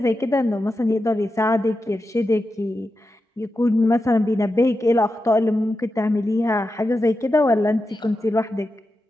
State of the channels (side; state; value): both; normal; correlation 0.90